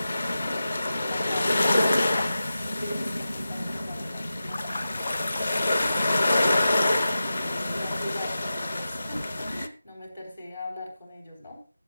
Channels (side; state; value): both; inverted; correlation -0.93